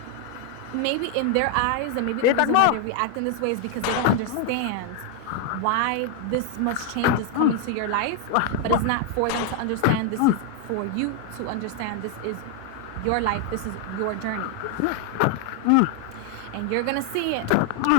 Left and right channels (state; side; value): different; both; correlation 0.00